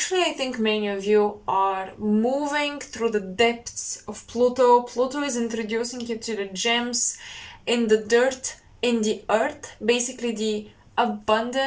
I think many of you are moving through the depths of Pluto. Pluto is introducing you to the gems in the dirt, in the earth, basically the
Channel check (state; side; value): identical; both; correlation 1.00